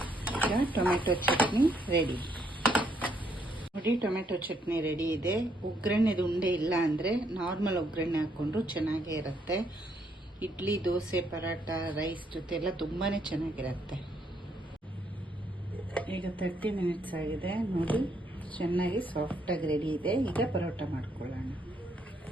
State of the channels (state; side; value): normal; both; correlation 0.72